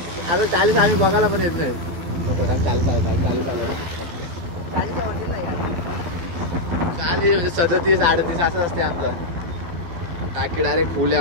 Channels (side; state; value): left; late; 12 ms